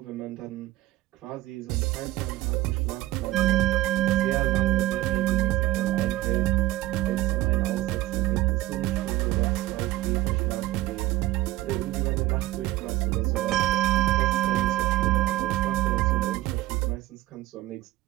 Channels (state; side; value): quieter; left; 16.7 dB